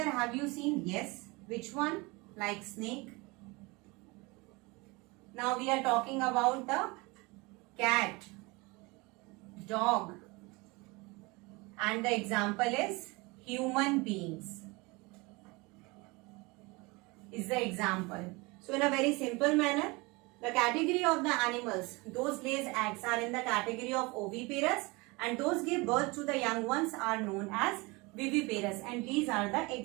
have you seen? Yes. Which one? Like snake. Now we are talking about the cat, dog, and the example is human beings. Is the example. So in a very simple manner, the category of the animals, those lays eggs, are in the category of oviparous, and those give birth to the young ones are known as viviparous, and these are the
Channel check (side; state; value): left; quieter; 25.4 dB